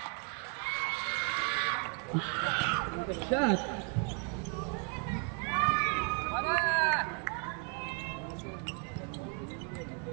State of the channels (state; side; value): quieter; left; 34.6 dB